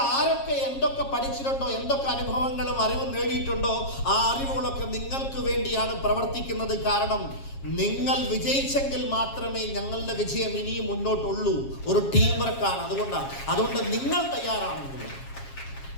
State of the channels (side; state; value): right; late; 7.4 ms